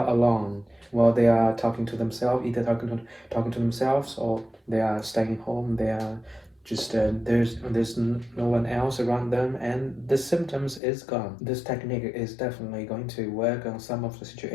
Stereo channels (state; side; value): drops out; right; at 10.8 s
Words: alone, while they are talking to themselves, either talking to themselves or they are staying home. They are just there's no one else around them, and the symptoms is gone. This technique is definitely going to work on some of the